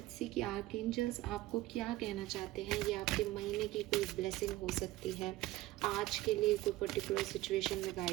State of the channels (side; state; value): left; quieter; 16.8 dB